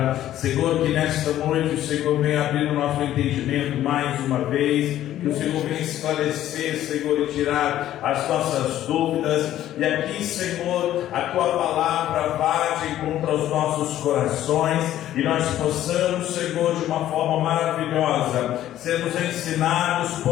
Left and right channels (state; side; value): quieter; right; 12.7 dB